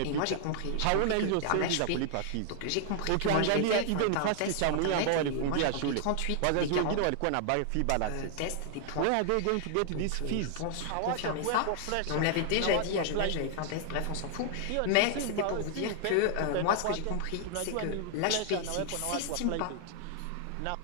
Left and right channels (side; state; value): both; different; correlation 0.00